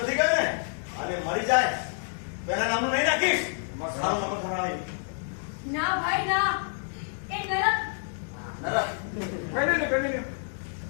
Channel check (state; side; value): silent; right; digital silence